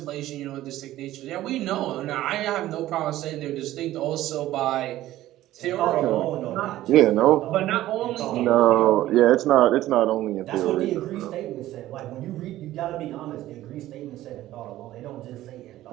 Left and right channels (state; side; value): quieter; left; 14.8 dB